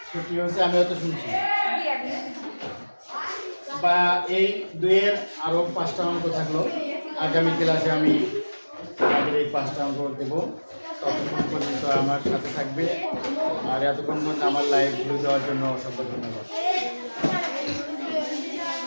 ছুটি হচ্ছে, আমি হয়তো শুনছি। বা এই দুইয়ের আরো 5টা অঙ্ক থাকলো, আগামী ক্লাসে আমি আমাদের এই 5টা অঙ্ক দেবো। ততক্ষণ পর্যন্ত আমার সাথে থাকবে, আর এতক্ষণ পর্যন্ত আমার লাইভ ভিউ দেওয়ার জন্য অসংখ্য ধন্যবাদ।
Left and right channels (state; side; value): inverted; both; correlation -1.00